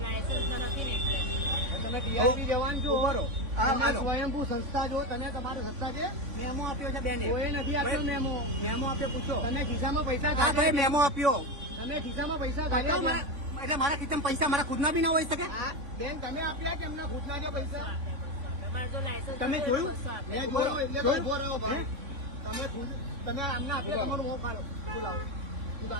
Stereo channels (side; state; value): left; late; 3.5 ms